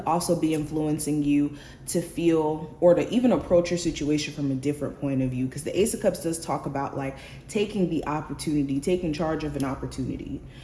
also be influencing you to feel, or to even approach your situation from a different point of view. Because the Ace of Cups does talk about like taking the opportunity, taking charge of an opportunity.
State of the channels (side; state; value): both; identical; correlation 1.00